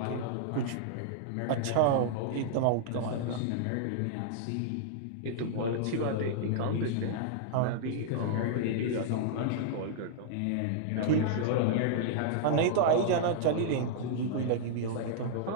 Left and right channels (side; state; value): both; different; correlation -0.01